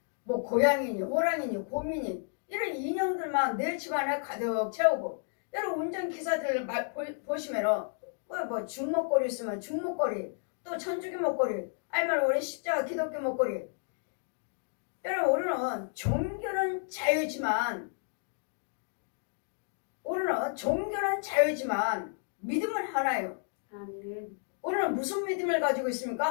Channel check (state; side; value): silent; right; 57 dB below the other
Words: 뭐 고양이니 호랑이니 곰이니 이런 인형들만 내 집안에 가득 채우고, 여러분 운전기사들 보시면은 뭐 중목걸이 있으면 중목걸이, 또 천주교 목걸이, 아니면 우리 십자가 기독교 목걸이. 여러분 우리는 종교는 자유지만 믿음은 하나예요. 아멘. 우리는 무슨 믿음을 가지고